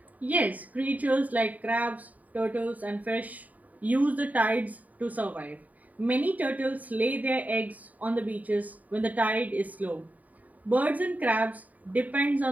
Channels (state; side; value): late; left; 0.074 ms